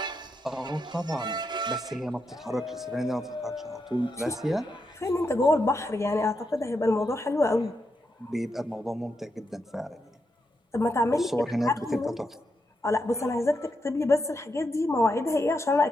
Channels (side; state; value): both; normal; correlation 0.84